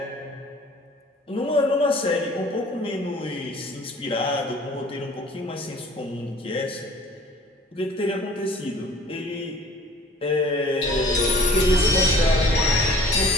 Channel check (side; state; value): both; normal; correlation 0.49